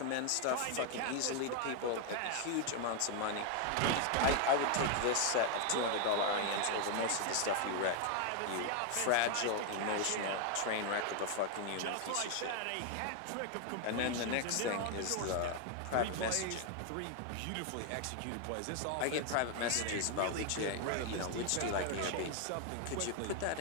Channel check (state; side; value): different; both; correlation 0.00